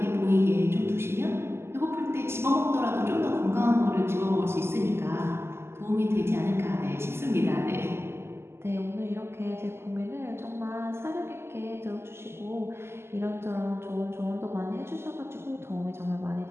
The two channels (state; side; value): late; left; 0.12 ms